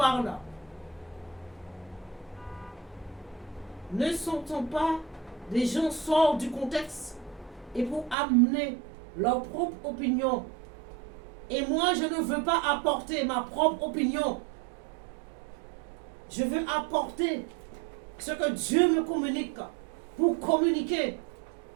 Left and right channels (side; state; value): left; drops out; at 8.2 s